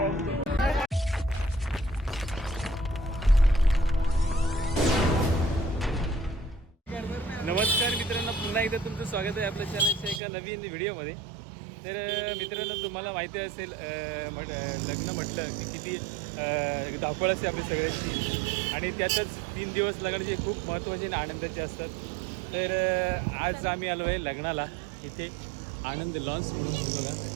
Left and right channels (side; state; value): left; drops out; at 10.2 s